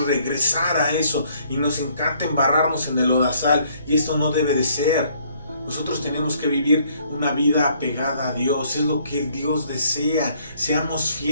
regresar a eso y nos encanta embarrarnos en el lodazal, y esto no debe de ser. Nosotros tenemos que vivir una vida apegada a Dios, es lo que Dios desea, seamos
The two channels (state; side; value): inverted; both; correlation -0.64